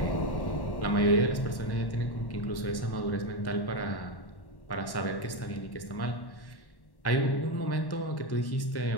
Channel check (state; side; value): late; right; 1.1 ms